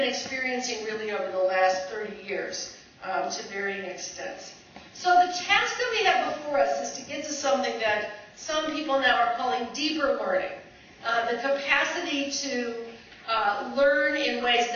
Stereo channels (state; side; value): identical; both; correlation 1.00